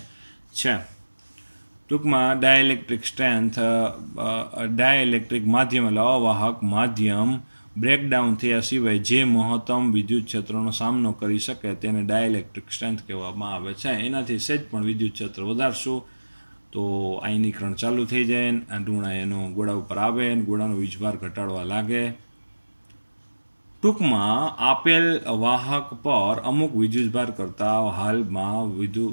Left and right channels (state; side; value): inverted; both; correlation -1.00